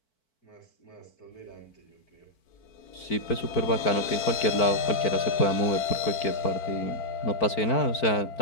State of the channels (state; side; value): late; right; 4.5 ms